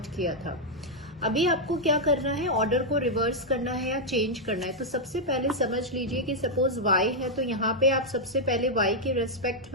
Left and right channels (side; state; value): both; normal; correlation -0.03